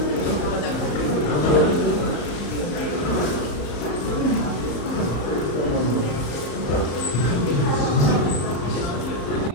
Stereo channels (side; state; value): right; late; 34 ms